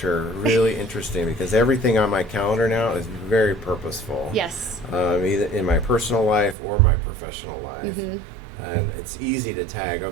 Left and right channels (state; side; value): drops out; left; at 6.6 s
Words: really interesting because everything on my calendar now is very purposeful. Yes. Either in my personal life or my professional life. And it's easy to tag,